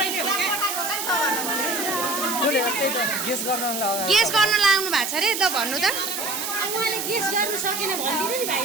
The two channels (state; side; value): noise; right; hiss, 4 dB below the sound